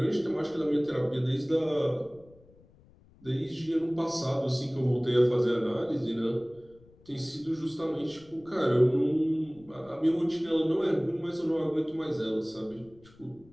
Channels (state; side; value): noise; left; rumble, 27 dB below the sound